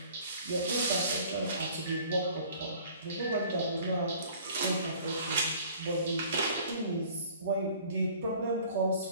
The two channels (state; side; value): inverted; both; correlation -0.51